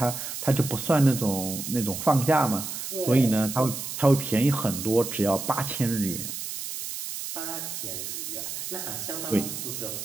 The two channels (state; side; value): noise; right; hiss, 6 dB below the sound